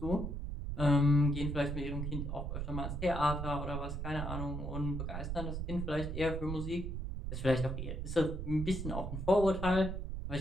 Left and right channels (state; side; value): noise; right; rumble, 4 dB below the sound